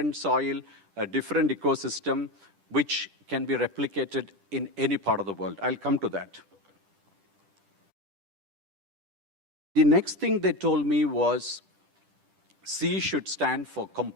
soil, a different ecosystem, which can be replicated in any part of the world. I'll come to that. The next thing they told me was, C should stand for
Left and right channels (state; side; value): late; left; 10 ms